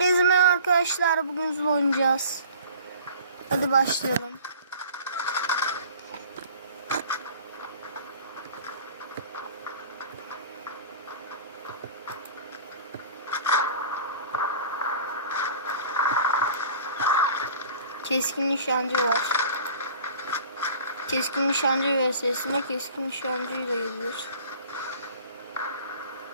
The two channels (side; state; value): both; inverted; correlation -0.44